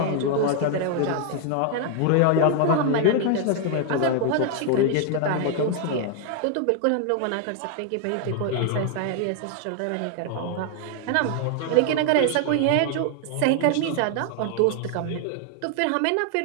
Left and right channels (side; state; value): both; different; correlation 0.00